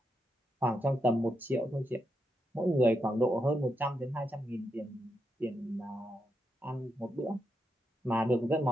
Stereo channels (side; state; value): both; normal; correlation 0.83